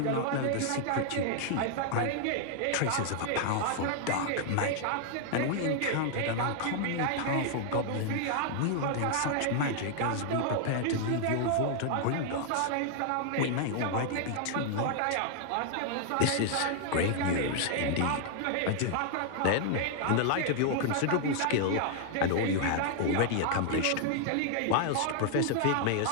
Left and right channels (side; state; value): both; different; correlation 0.00